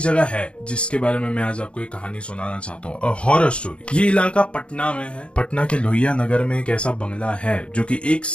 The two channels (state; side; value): late; right; 0.058 ms